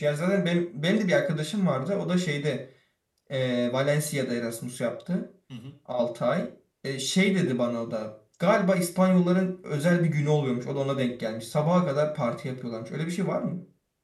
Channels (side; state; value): both; identical; correlation 1.00